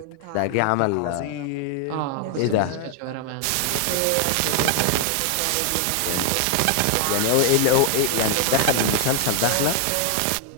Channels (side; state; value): both; different; correlation 0.00